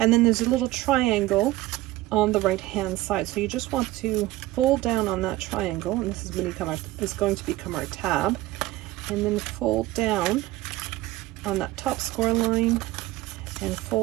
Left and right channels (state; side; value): quieter; left; 17.3 dB